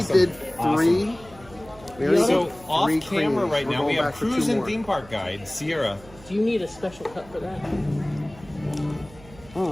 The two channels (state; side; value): noise; right; hum, 21 dB below the sound